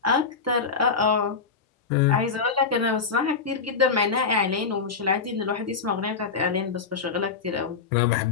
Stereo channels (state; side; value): quieter; right; 5.2 dB